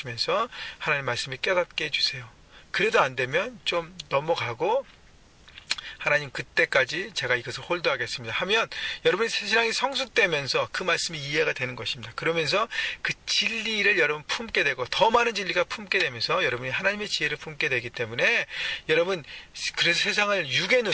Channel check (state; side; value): identical; both; correlation 1.00